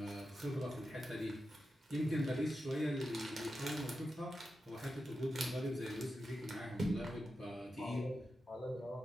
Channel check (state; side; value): normal; both; correlation 0.90